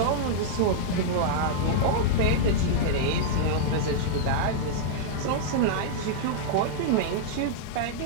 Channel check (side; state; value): both; different; correlation -0.02